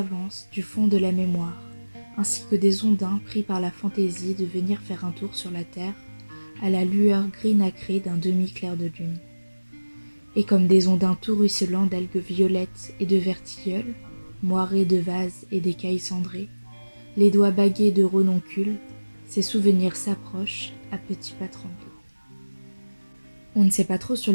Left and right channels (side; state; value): both; inverted; correlation -1.00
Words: du fond de la mémoire, ainsi que des ondins pris par la fantaisie de venir faire un tour sur la terre, à la lueur gris nacrée d'un demi-clair de lune. Et comme des ondins tout ruisselants d'algues violettes et de vertilleuls, moirés de vases et d'écailles cendrées, les doigts bagués de renoncules, ces souvenirs s'approchent à petits pas tremblés. On ne sait pas trop sur